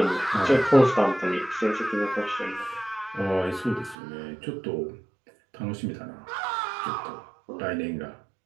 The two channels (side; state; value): left; drops out; at 4.0 s